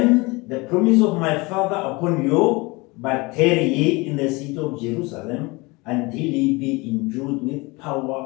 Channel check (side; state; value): right; quieter; 25.0 dB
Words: the promise of my Father upon you, but tarry ye in the city of Jerusalem until ye be endued with